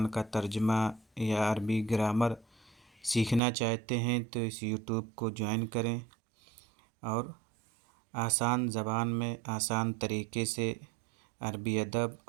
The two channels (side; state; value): left; drops out; at 3.4 s